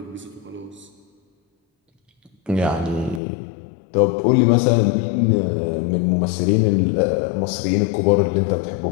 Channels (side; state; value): right; drops out; at 3.2 s